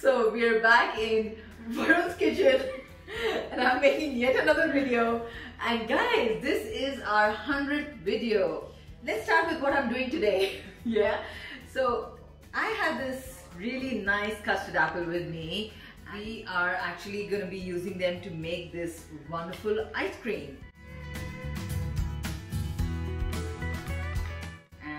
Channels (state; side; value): identical; both; correlation 1.00